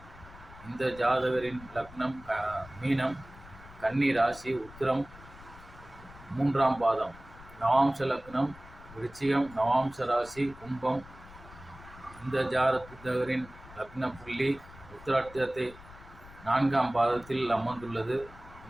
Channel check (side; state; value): left; noise; rumble, 19 dB below the sound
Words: இந்த ஜாதகரின் லக்னம் மீனம், கன்னி ராசி, உத்திரம் 3ஆம் பாதம், நவாம்ச லக்னம் விருச்சிகம், நவாம்ச ராசி கும்பம். இந்த ஜாதகரின் லக்ன புள்ளி உத்திராட்டத்தை 4ஆம் பாதத்தில் அமர்ந்துள்ளது.